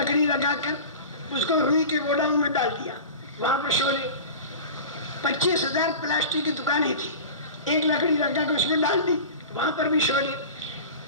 لگا کر اس کو روئی کے گوڈاؤن میں ڈال دیا، وہاں پر شعلے، 25,000 پلاسٹک کی دکانیں تھی، ایک لکڑی رکھا کے اس میں ڈال دی، وہاں پر بھی شعلے.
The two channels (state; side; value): inverted; both; correlation -0.33